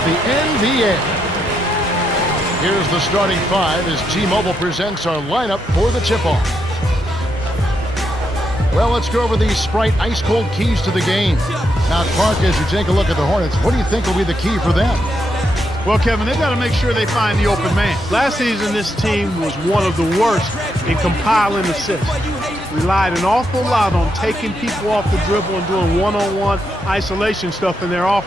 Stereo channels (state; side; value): normal; both; correlation 0.80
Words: the NBA. Here's the starting five as T-Mobile presents our lineup for the tip-off. Well, let's go over these Sprite ice-cold keys to the game. Now, Clark, as you take a look at the Hornets, what do you think will be the key for them? Well, Kevin, they've got to make sure they find the open man. Last season, this team was one of the worst in compiling assists. Relied an awful lot on taking people off the dribble and doing one-on-one isolation stuff in their